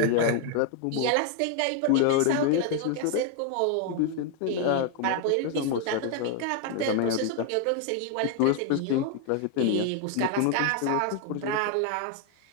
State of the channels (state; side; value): different; both; correlation 0.00